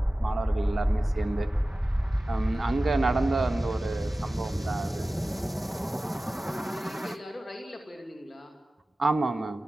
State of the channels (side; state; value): both; normal; correlation 0.96